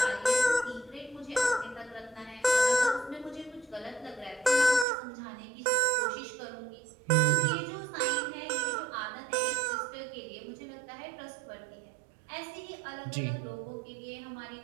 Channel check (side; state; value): left; drops out; at 4.9 s